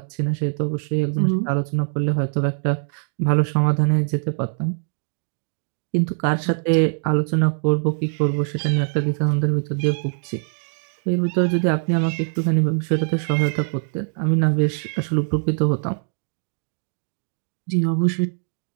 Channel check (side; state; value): left; silent; digital silence